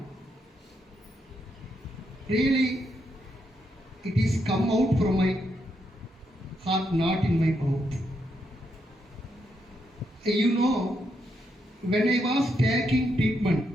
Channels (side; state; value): both; normal; correlation 0.80